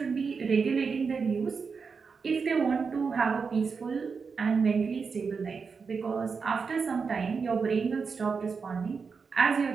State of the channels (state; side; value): quieter; left; 5.3 dB